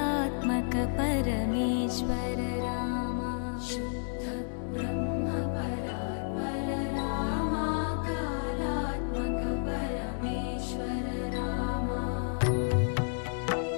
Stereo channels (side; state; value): right; silent; digital silence